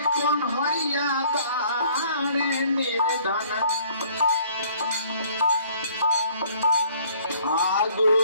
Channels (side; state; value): both; inverted; correlation -0.57